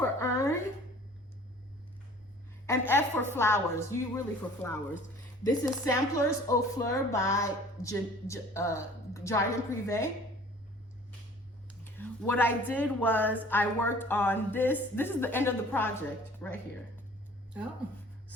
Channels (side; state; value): both; normal; correlation 0.49